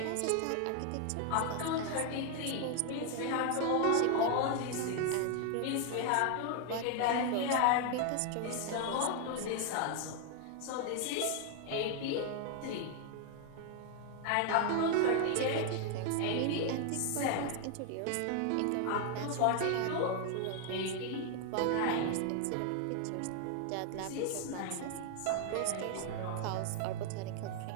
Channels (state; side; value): different; both; correlation 0.00